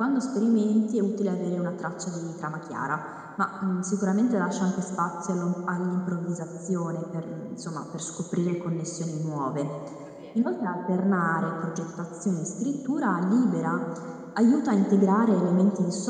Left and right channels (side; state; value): both; identical; correlation 1.00